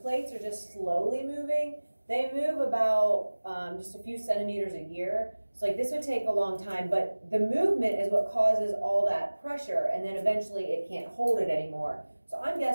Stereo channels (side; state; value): both; inverted; correlation -1.00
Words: plates are just slowly moving, they move about just a few centimeters a year. So like this would take a long time, but the movement is what causes all that pressure, and then eventually it can't hold it anymore. So I'm